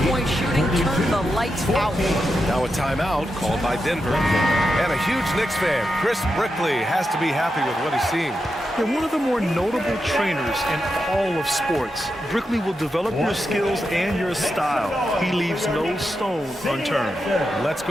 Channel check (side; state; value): both; normal; correlation 0.87